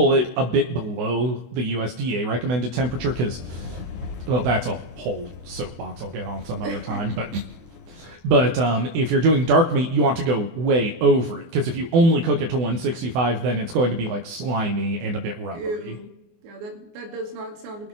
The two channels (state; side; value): late; left; 24 ms